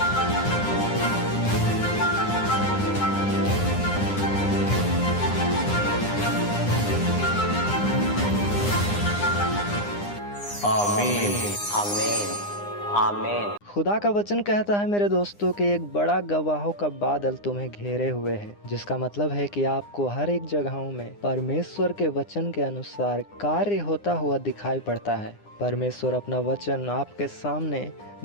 आमीन आमीन आमीन। खुदा का वचन कहता है मेरे दोस्तों कि एक बड़ा गवाहों का बादल तुम्हें घेरे हुए है, जिसका मतलब है कि आपको हर एक जगहों में परमेश्वर के वचन के अनुसार कार्य होता हुआ दिखाई पड़ता है। परमेश्वर अपना वचन आपके सामने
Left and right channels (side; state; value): right; late; 9.8 ms